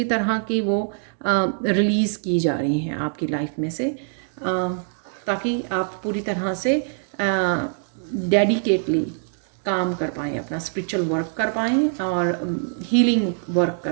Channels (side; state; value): left; silent; digital silence